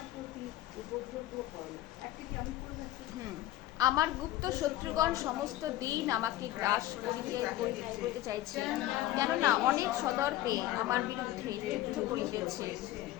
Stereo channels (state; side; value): quieter; right; 14.8 dB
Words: প্রতি উপদ্রব করে। একটা কি আমি করে যাচ্ছি? আমার গুপ্ত শত্রুগণ সমস্ত দিন আমাকে গ্রাস করিতে চাইছে, কেননা অনেক সদর্পে আমার বিরুদ্ধে যুদ্ধ করিতেছে।